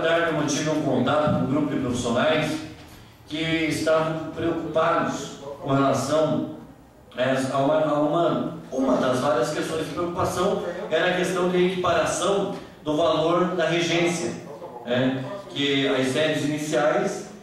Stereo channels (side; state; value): both; identical; correlation 1.00